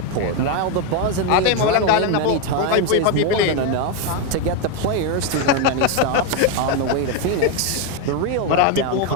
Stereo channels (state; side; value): different; both; correlation 0.02